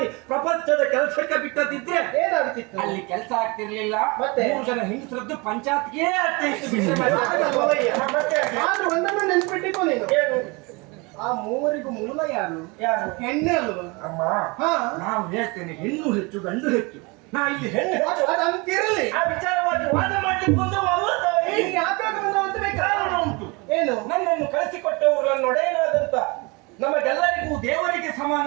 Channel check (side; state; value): left; quieter; 27.3 dB